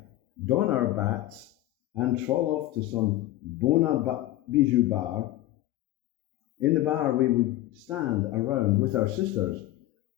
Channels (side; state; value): right; quieter; 15.3 dB